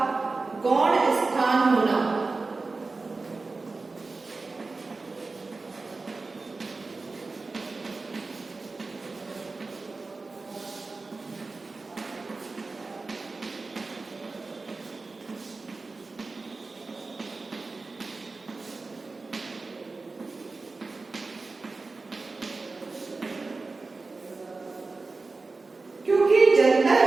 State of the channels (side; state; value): left; quieter; 3.8 dB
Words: गौण स्थान होना। क्योंकि जनता